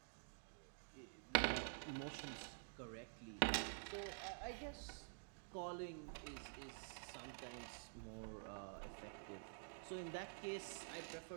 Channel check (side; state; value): left; silent; digital silence